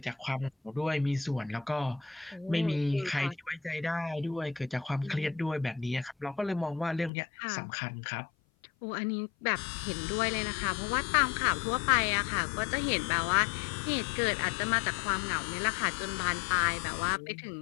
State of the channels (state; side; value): drops out; right; at 7.1 s